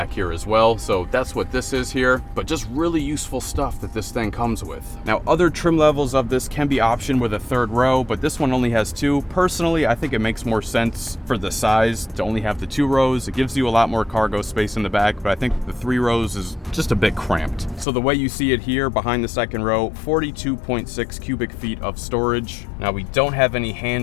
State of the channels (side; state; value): right; drops out; at 17.9 s